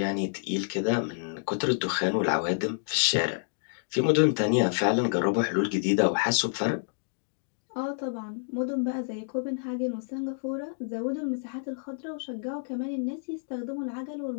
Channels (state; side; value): silent; right; digital silence